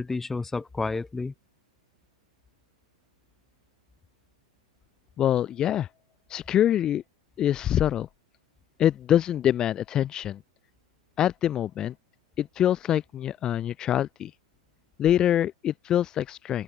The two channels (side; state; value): right; quieter; 10.2 dB